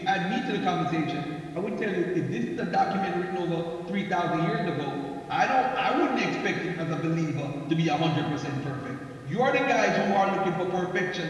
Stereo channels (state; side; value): identical; both; correlation 1.00